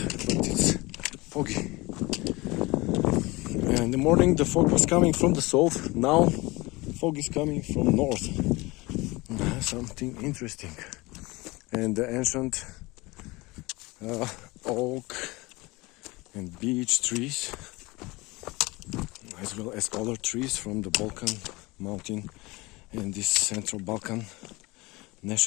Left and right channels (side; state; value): right; quieter; 22.8 dB